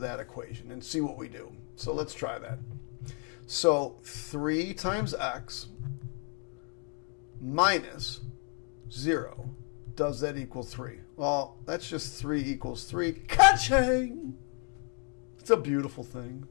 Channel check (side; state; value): right; quieter; 36.2 dB